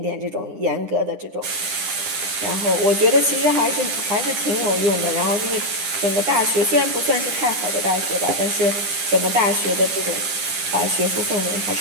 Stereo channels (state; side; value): late; left; 10 ms